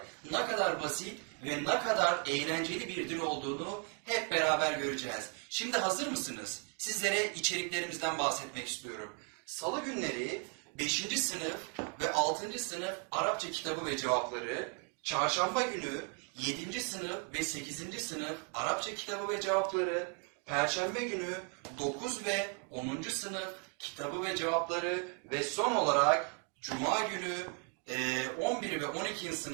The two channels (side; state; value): left; quieter; 36.9 dB